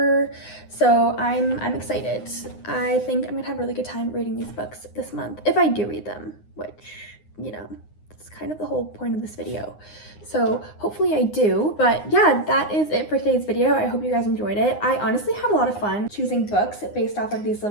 So I'm excited. I think I'm gonna have a really good time reading these books this month, if I do read them, which, you know, that's kind of the whole point of this video. So hopefully I do. But yeah, that is it for today's video. I hope you guys enjoyed it. I honestly had a lot of fun choosing books based off of these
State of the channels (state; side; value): late; right; 9.7 ms